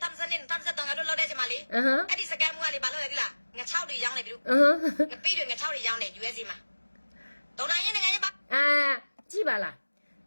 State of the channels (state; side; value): inverted; both; correlation -1.00